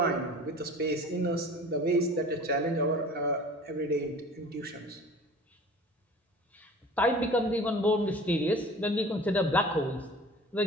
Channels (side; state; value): both; normal; correlation 0.43